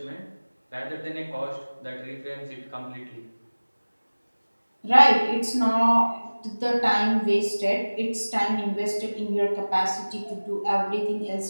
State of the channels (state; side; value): inverted; both; correlation -1.00